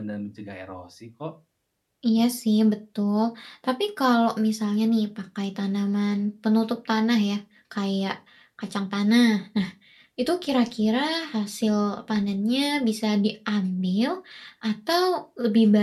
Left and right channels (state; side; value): identical; both; correlation 1.00